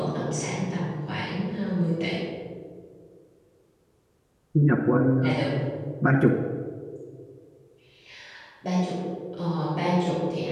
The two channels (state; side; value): identical; both; correlation 1.00